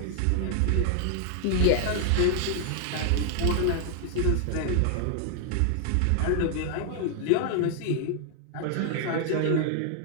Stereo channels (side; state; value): both; different; correlation 0.00